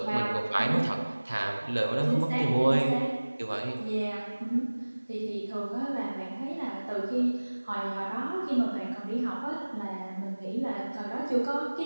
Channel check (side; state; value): both; inverted; correlation -1.00